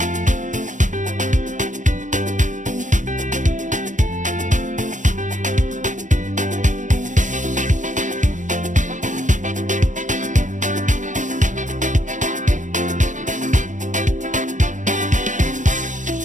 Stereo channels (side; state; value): left; late; 0.37 ms